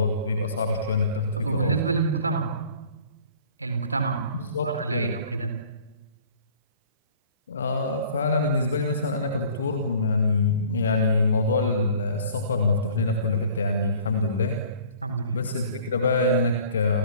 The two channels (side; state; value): both; inverted; correlation -0.50